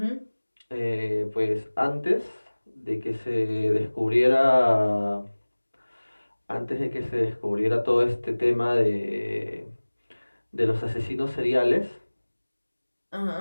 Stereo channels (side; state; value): both; inverted; correlation -1.00